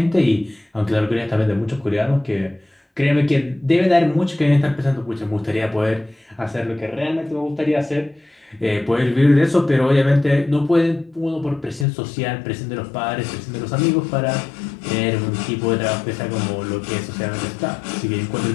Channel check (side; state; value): right; drops out; at 11.9 s